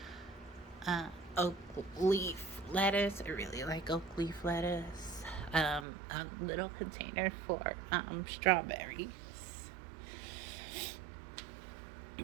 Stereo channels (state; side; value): drops out; left; at 5.9 s